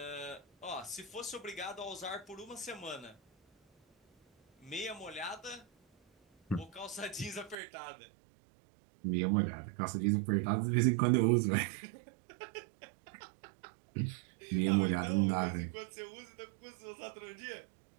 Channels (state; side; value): drops out; left; at 7.6 s